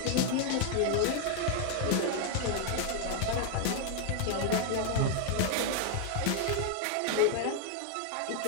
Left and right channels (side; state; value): both; different; correlation 0.00